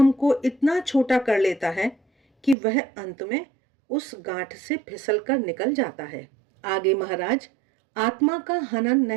को इतना छोटा कर लेता है कि वह अंत में उस गांठ से फिसलकर निकल जाता है। आगे महाराज आत्मा का हनन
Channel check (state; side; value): drops out; left; at 2.6 s